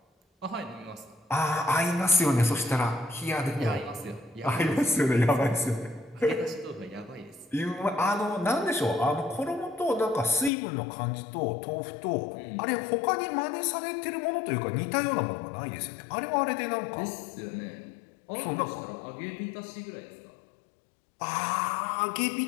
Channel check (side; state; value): right; drops out; at 10.5 s